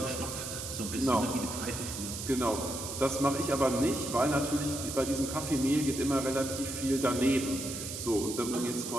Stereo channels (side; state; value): right; noise; hiss, 7 dB below the sound